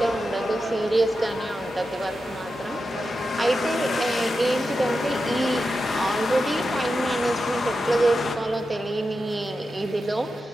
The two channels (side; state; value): both; normal; correlation 0.90